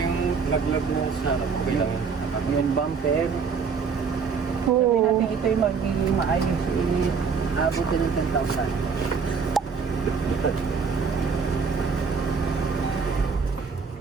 laglag mo sa okay lang yun. Yung bumper. Sabihin Oo. natin ito yung magiging maayos. Abot din ng 10,000.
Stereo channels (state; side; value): quieter; left; 5.5 dB